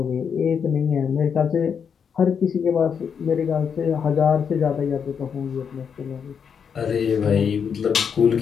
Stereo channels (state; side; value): quieter; right; 7.0 dB